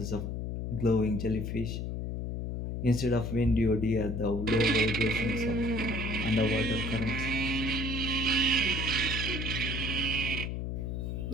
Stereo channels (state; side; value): noise; left; hum, 3 dB below the sound